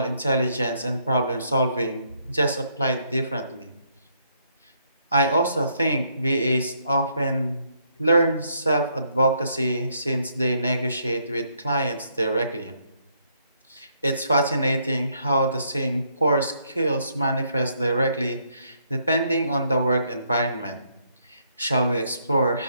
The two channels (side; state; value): both; inverted; correlation -0.72